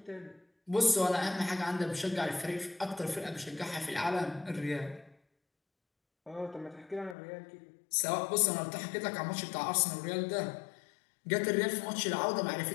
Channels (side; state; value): right; drops out; at 7.2 s